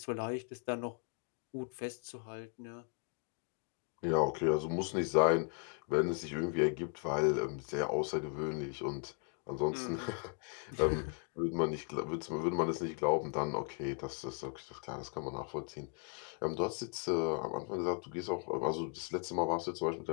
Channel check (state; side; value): quieter; right; 39.4 dB